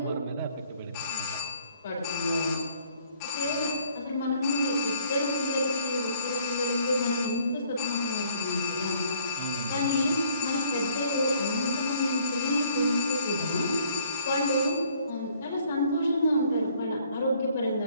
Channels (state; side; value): inverted; both; correlation -0.61